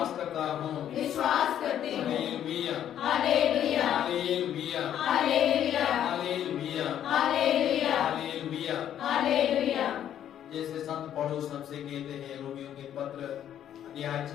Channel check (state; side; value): quieter; right; 10.4 dB